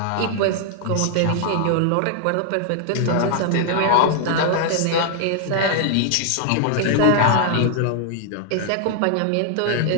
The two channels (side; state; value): both; different; correlation 0.00